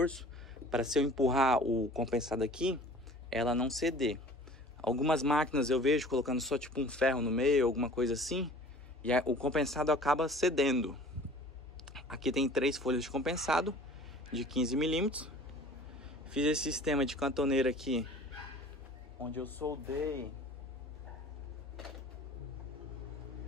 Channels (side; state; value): both; normal; correlation 0.46